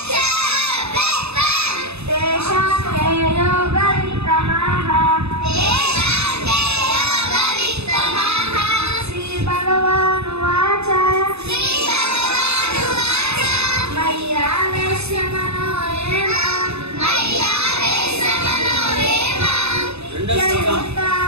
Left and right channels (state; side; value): late; left; 0.80 ms